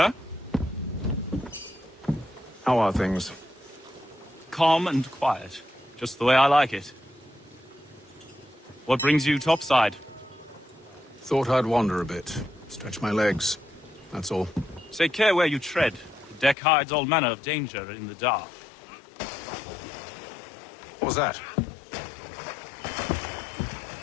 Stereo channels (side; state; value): right; drops out; at 16.6 s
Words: How are things? Calm and quiet. Just the way I like it. What brings you topside? Thought I'd wander a bit. Stretch my legs. That's all. Take care where you tread. The deck hides all manner of danger in the dark. What was that?